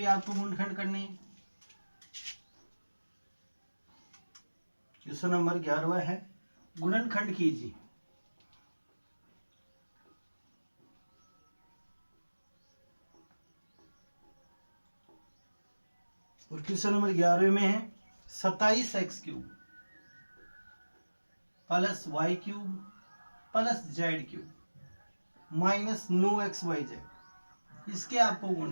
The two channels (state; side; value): inverted; both; correlation -1.00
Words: आपको गुणनखंड करने हैं। क्वेश्चन नंबर 11 है गुणनखंड कीजिए। और क्वेश्चन नंबर 11 में है 27x cube plus y cube plus z cube minus 9xyz, इसके आपको